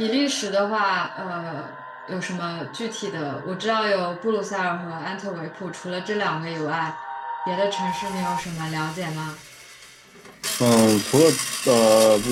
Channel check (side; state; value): both; identical; correlation 1.00